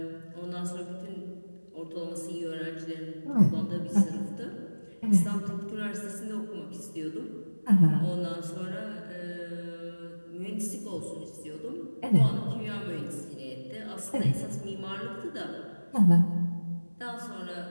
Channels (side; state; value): both; inverted; correlation -1.00